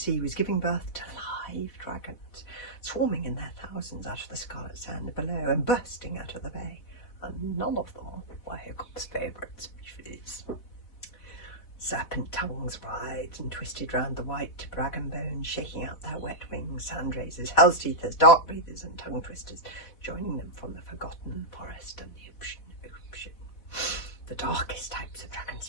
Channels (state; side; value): late; right; 4.1 ms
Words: was giving birth to live dragons, swarming in their thousands out of the scarlet sand below and bursting out of the bay, and none of them were Hiccup's favourite species. Serpent tongues writhed and twisted round the white dragon bones, shaking out their wet wings, sandraisers, hell's teethers, dark breathers and tongue twisters, joining them from the forgotten forest and the ocean. The darkest types of dragon